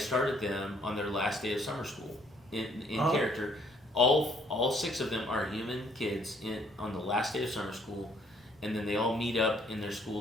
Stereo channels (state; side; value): normal; both; correlation 0.64